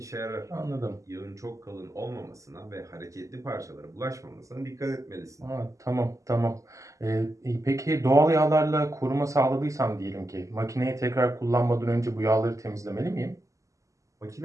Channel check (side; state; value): left; late; 0.16 ms